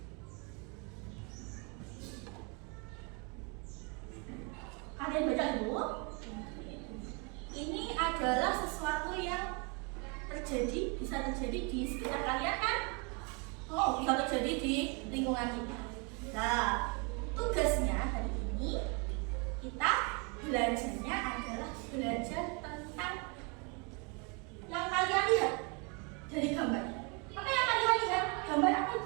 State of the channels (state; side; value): quieter; left; 32.9 dB